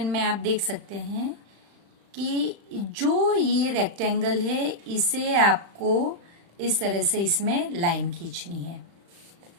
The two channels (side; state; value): left; late; 35 ms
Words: में आप देख सकते हैं कि जो ये रेक्टेंगल है इसे आपको इस तरह से इसमें लाइन खींचनी है।